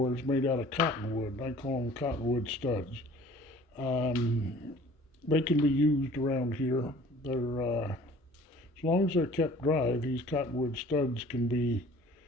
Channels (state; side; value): normal; both; correlation 0.50